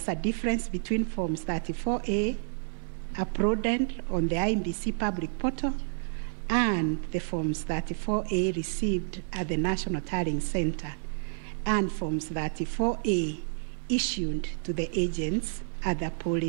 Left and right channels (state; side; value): silent; left; digital silence